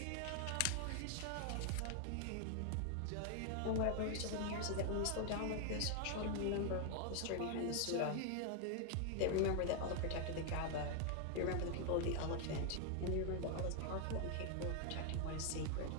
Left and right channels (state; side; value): different; both; correlation 0.00